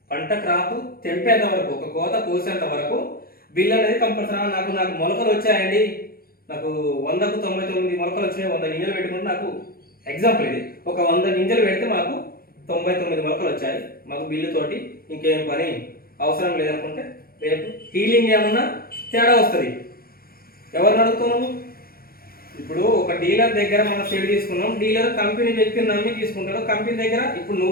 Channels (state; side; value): late; right; 0.44 ms